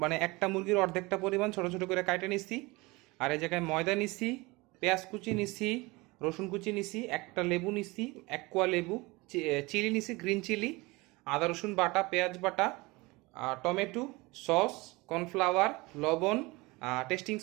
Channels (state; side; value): quieter; left; 23.6 dB